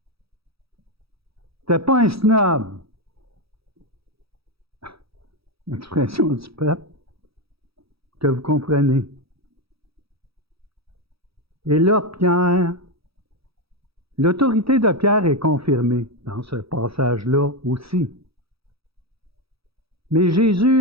C'était pas un snob. L'expression du peuple que vous comprenez. Et là, Pierre, l'autorité de Pierre est confirmée dans ce passage-là aussi. Mais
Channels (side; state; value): left; late; 0.77 ms